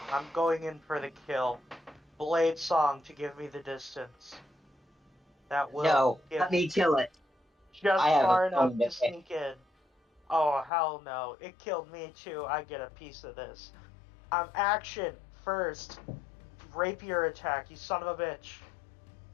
I'm going in for the kill. Blade Song to give me the distance. That will No, give let me kill it. just I have far a enough phone to to pick. sneak in. Oh, hell no. It killed me too. I get a piece of this. Action first. Rapier attack, you son of a bitch.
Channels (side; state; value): right; drops out; at 10.7 s